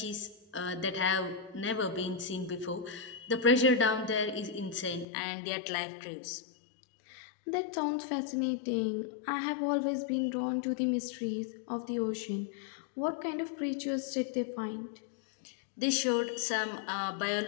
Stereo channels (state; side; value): drops out; right; at 5.1 s